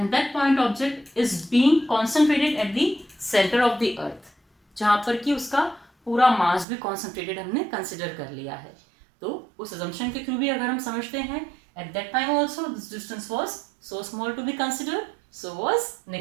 that point object is being concentrated at the centre of the earth, जहाँ पर कि उसका पूरा मास भी कॉन्सेंट्रेटेड हमने कंसिडर कर लिया है. तो उस assumption के थ्रू भी अगर हम समझते हैं, at that time also this distance was so small to be considered, so was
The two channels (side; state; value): left; drops out; at 6.7 s